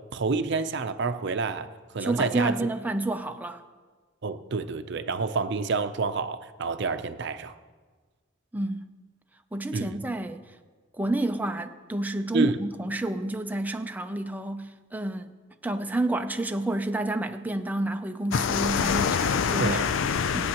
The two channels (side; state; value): both; normal; correlation 0.39